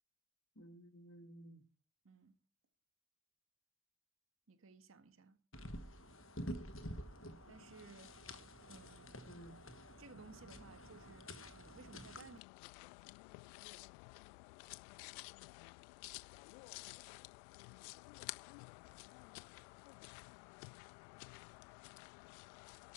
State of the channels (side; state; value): right; drops out; at 12.4 s